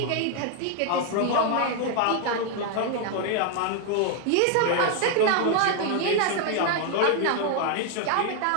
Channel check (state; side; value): different; both; correlation 0.00